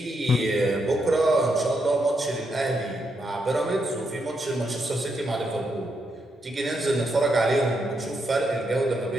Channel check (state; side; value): normal; both; correlation 0.80